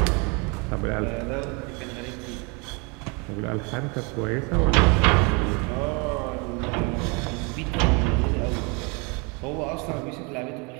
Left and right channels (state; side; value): quieter; left; 30.9 dB